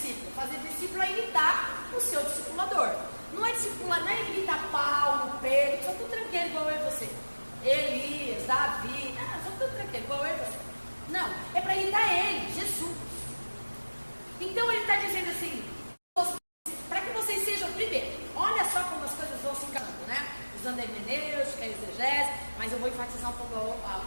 Fazer discípulo é imitar o seu discipulador. Não é discipular, não é imitar Paulo, Pedro, são tudo tranqueiro igual eu e você. Elias, Davi, são tudo tranqueiro igual eu e você. Não, é para imitar ele, Jesus. Então ele está dizendo assim, para que vocês sejam primeiro, olha só como as coisas vão se encaminhando, né? Usando a hermenêutica, a exegese, mas eu vou enfatizar um pouco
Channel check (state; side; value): inverted; both; correlation -1.00